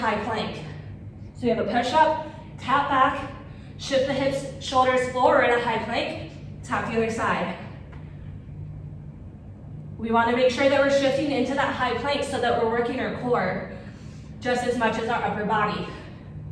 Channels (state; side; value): identical; both; correlation 1.00